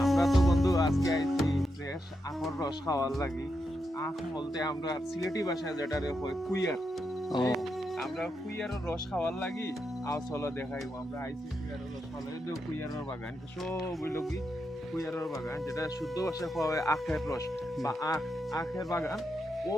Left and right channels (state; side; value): normal; both; correlation 0.84